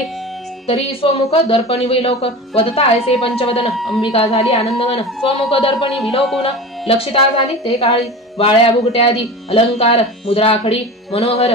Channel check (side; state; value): both; normal; correlation 0.31